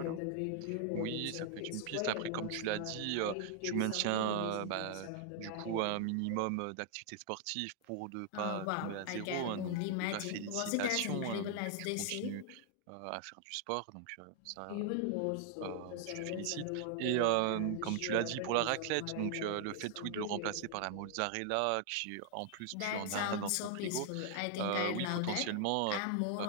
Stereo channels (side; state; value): both; different; correlation -0.01